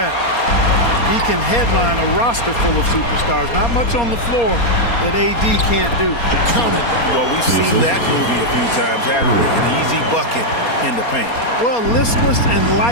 He can headline a roster full of superstars. Not much on the floor that AD can't do. Count it. Well, we've seen that movie a few times, haven't we? An easy bucket in the paint. Well, listless and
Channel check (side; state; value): right; late; 4.3 ms